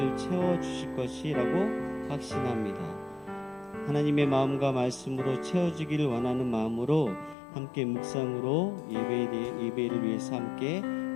채워주실 것이라고 확신합니다. 하나님의 마음과 말씀으로 채워주기를 원하는 마음으로 함께 묵상으로 예배를 위해서 함께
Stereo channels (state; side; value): drops out; right; at 7.4 s